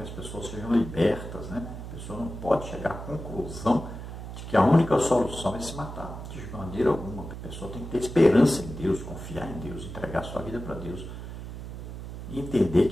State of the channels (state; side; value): noise; right; hum, 9 dB below the sound